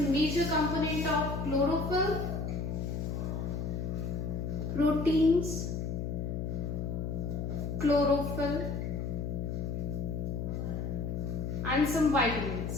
major component of chlorophyll, proteins, chlorophyll, and some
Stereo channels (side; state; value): left; noise; hum, 2 dB below the sound